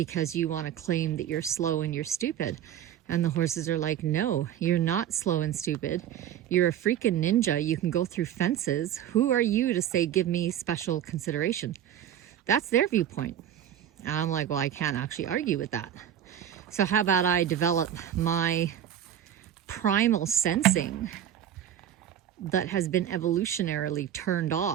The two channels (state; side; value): quieter; left; 10.4 dB